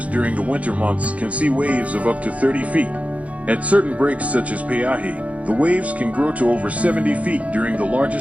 during the winter months can see waves of up to 30 feet. At certain breaks such as Peahi, the waves can grow to over 70 feet during the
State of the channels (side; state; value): left; late; 0.066 ms